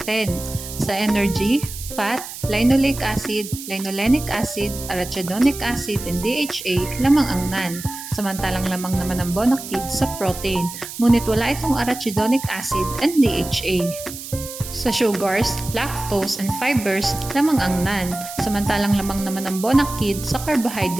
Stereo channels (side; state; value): right; noise; hiss, 11 dB below the sound